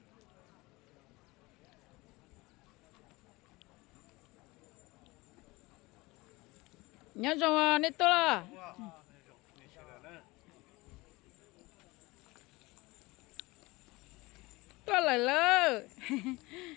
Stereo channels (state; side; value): quieter; right; 22.3 dB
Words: nhớ rồi nít to là to lại lơ